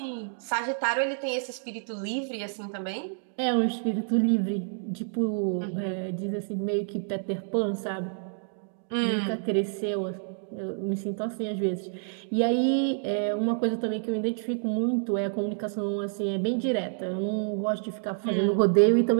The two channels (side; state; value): left; silent; digital silence